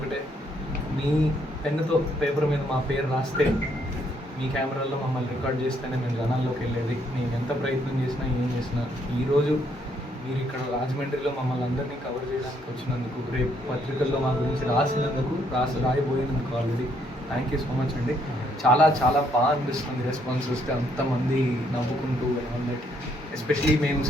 మీ పెన్నుతో పేపర్ మీద మా పేరు రాస్తే, మీ కెమెరాల్లో మమ్మల్ని రికార్డ్ చేస్తేనే మేము జనాల్లోకి వెళ్ళేది. మేము ఎంత ప్రయత్నం చేసినా ఏం చేసినా ఈరోజు మీరు ఇక్కడ రాజమండ్రిలో మమ్మల్ని అందరినీ కవర్ చేయడానికి వచ్చినందుకు, రేపు పత్రికల్లో మా గురించి రాసినందుకు, రాయబోయినందుకు already thank you so much అండి. చాలా చాలా బాగా అనిపిస్తుంది రెస్పాన్స్ వస్తే, అంతమంది నవ్వుకుంటూ అందరికి. ఎస్పెషలీ మేము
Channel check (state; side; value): normal; both; correlation 0.71